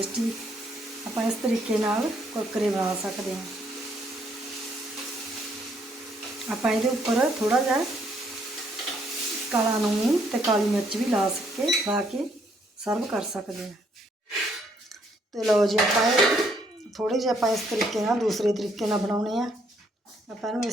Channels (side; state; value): both; normal; correlation 0.70